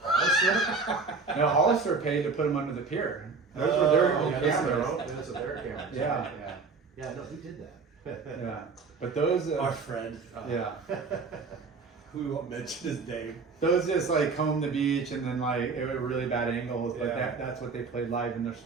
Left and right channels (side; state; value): left; quieter; 4.6 dB